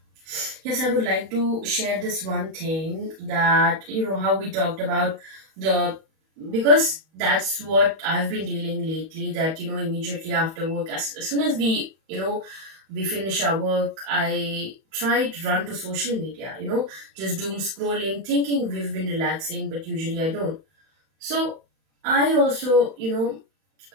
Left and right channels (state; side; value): late; left; 31 ms